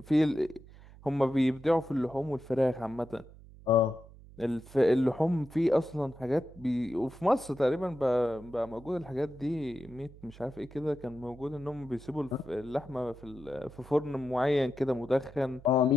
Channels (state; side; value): noise; right; hum, 20 dB below the sound